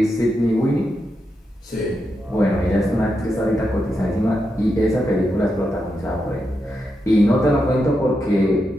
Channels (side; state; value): both; normal; correlation 0.85